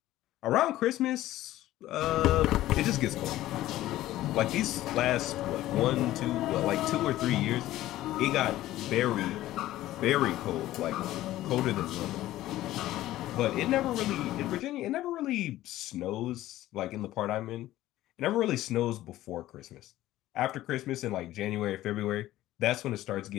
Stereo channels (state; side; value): quieter; right; 15.0 dB